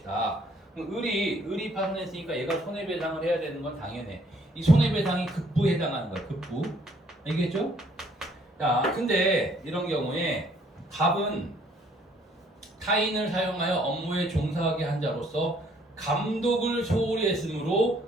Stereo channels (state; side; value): normal; both; correlation 0.63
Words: 그럼 을이 파손했으니까 얘가 손해배상을 해야 되는 건 당연해. 이 손해배상이 급부에 해당하는 거야. 급부. 알겠죠? 자, 근데 이런 경우에 갑은 타인을 사용하여 업무에 종사하게 한 자로서 감독을 소홀히 했으므로